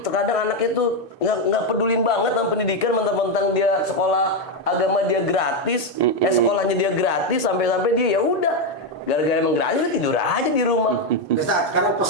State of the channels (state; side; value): normal; both; correlation 0.05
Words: Terkadang anaknya tuh nggak pedulin banget sama pendidikan, mentang-mentang dia sekolah agama dia gratis, sekolahnya dia gratis, sampai-sampai dia ya udah gara-gara emang gratis dia tidur aja di rumah. Ustaz, sekarang